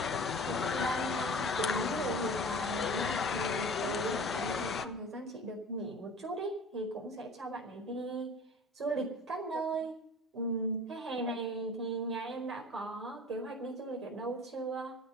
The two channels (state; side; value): normal; both; correlation 0.41